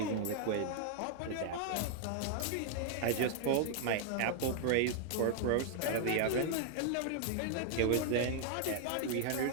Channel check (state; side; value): different; both; correlation 0.00